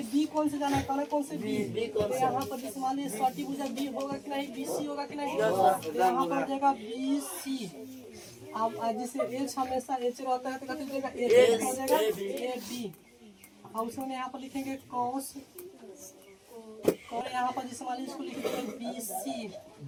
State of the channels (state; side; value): identical; both; correlation 1.00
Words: बी कौन से जाना है, कौन से बी, तो यहाँ पर जिसे मान लीजिए सटी भुजा बी होगा कि नहीं, बी सी होगा कि नहीं, तो यहाँ पर जाएगा बी सी। अब जिसे एच हमेशा एच रहता है तो कथी जाएगा एच हो जाएगा ए बी। और उसमें यहाँ पर लिखेंगे कॉस, और यहाँ पर जिसे मान लीजिए इसको लिखेंगे बी सी